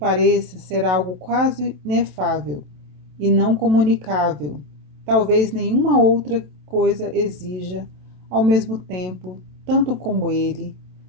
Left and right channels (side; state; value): left; late; 27 ms